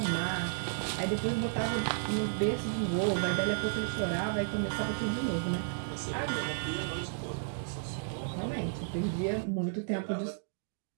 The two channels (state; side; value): silent; left; digital silence